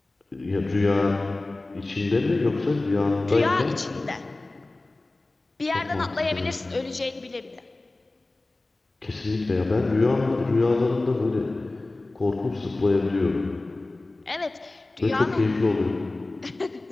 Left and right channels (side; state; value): right; quieter; 3.0 dB